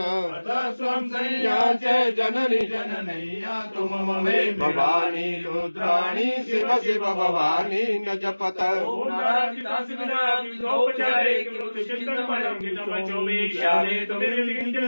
स्वं संज्ञा च जननी जननैया तुम ममे भवानी रुद्राणी शिव शिव भवानी न जपत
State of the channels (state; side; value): inverted; both; correlation -1.00